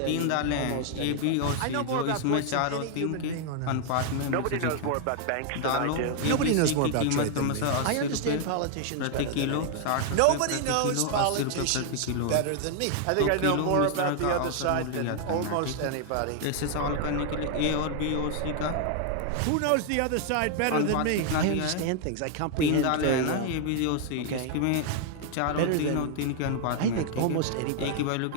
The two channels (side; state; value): both; different; correlation 0.00